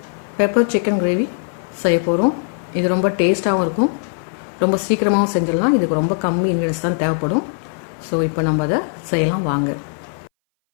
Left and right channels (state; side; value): silent; right; 61 dB below the other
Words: பெப்பர் சிக்கன் கிரேவி செய்ய போகிறோம். இது ரொம்ப டேஸ்ட்டாகவும் இருக்கும், ரொம்ப சீக்கிரமாகவும் செஞ்சிடலாம். இதுக்கு ரொம்ப கம்மி இன்க்ரீடியன்ஸ் தான் தேவைப்படும். ஸோ இப்போ நம்ம அதை செய்யலாம் வாங்க.